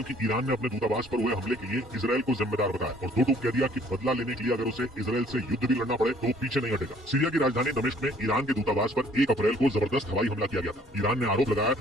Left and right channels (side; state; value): both; normal; correlation 0.59